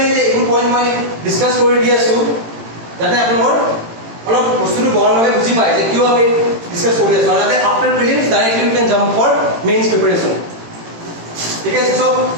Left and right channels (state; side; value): late; left; 18 ms